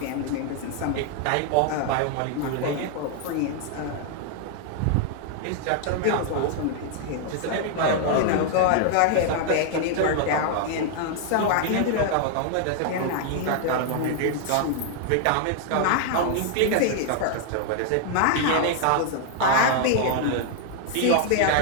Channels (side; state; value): both; different; correlation 0.00